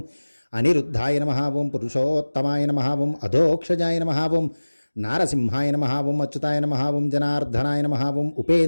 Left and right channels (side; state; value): both; inverted; correlation -1.00